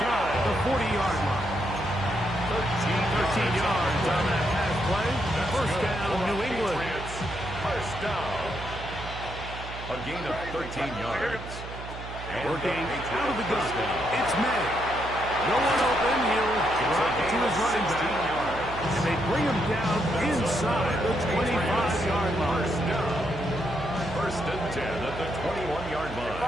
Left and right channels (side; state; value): right; noise; hum, 11 dB below the sound